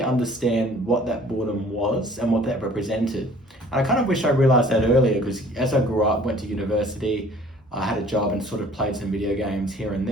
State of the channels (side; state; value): both; normal; correlation 0.53